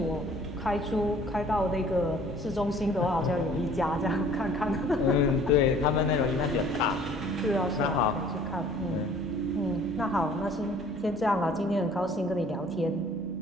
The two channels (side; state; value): both; normal; correlation 0.53